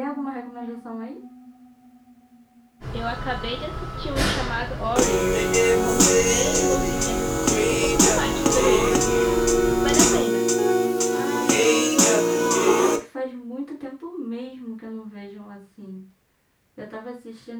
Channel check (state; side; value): identical; both; correlation 1.00